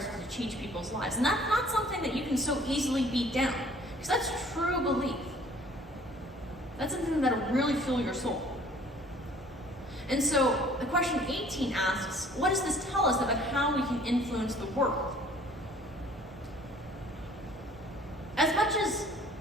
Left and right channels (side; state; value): both; normal; correlation 0.54